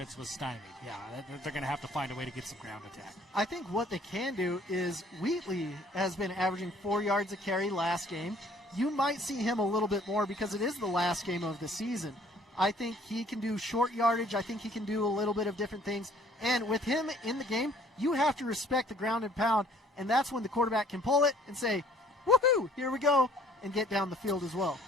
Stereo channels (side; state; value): both; normal; correlation 0.57